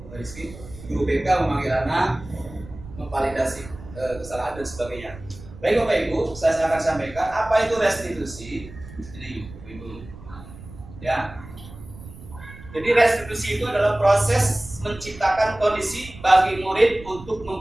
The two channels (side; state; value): right; noise; rumble, 17 dB below the sound